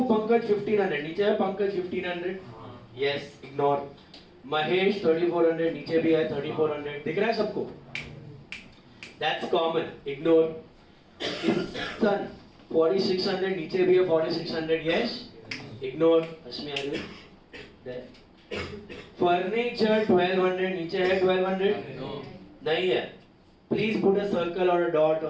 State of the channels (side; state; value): both; identical; correlation 1.00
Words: पंकज 1,500, नीचे है पंकज 1,500, यस इग्नोर। महेश 3,400, नीचे भी है 3,400, दिख रहा है सबको? That's common, ignore. सन 4,600, नीचे भी है 4,600, यस इग्नोर। अस्मी फर्नीचर 1200 नीचे है 1200 नहीं है. प्लीज पुट अ सर्कल और अ डॉट